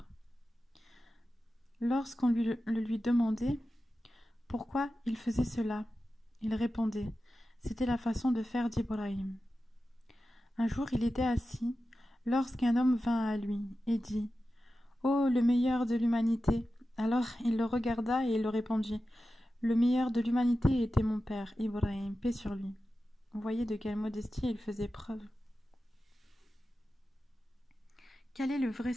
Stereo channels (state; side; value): normal; both; correlation 0.93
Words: Lorsqu'on lui demandait pourquoi il faisait cela, il répondait: C'était la façon de faire d'Ibrahim. Un jour, il était assis, lorsqu'un homme vint à lui et dit: Ô le meilleur de l'humanité! Alors il le regarda et il le répondit: Le meilleur de l'humanité était mon père, Ibrahim, paix sur lui. Vous voyez de quelle modestie il faisait preuve. Quel est le vrai